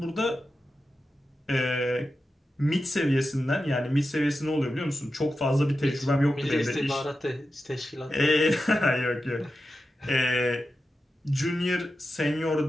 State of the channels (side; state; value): both; normal; correlation 0.91